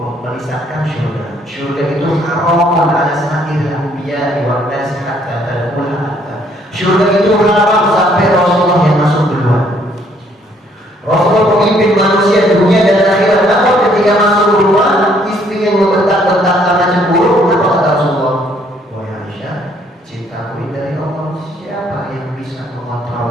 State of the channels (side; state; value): both; normal; correlation 0.65